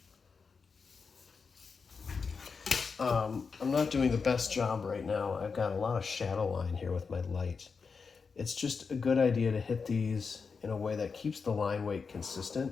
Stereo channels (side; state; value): right; quieter; 5.2 dB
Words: I'm not doing the best job right now. I've got a lot of shadow line here with my light. It's just a good idea to hit these in a way that keeps the line weight